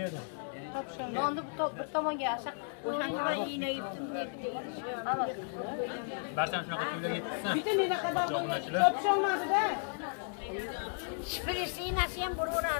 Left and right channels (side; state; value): right; silent; digital silence